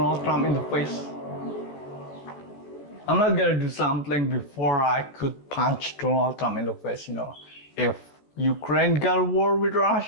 Trump in the face. I'm not gonna do something before I could punch Donald Trump in the face, If Ukraine got a war with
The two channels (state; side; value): late; right; 14 ms